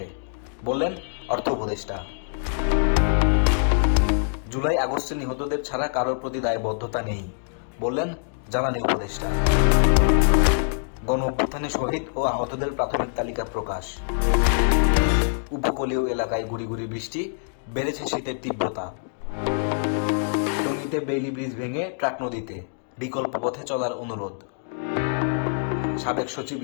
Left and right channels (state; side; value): silent; right; digital silence